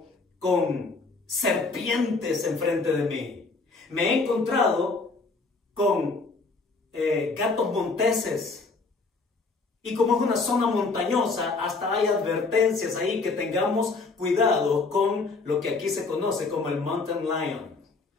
con serpientes enfrente de mí, me he encontrado con gatos monteses. Y como es una zona montañosa, hasta hay advertencias ahí que tengamos cuidado con lo que aquí se conoce como el mountain lion.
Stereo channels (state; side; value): quieter; right; 4.0 dB